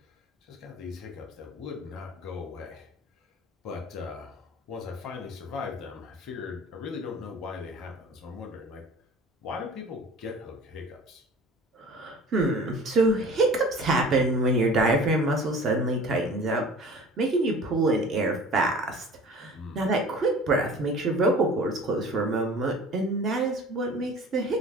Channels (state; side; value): normal; both; correlation 0.44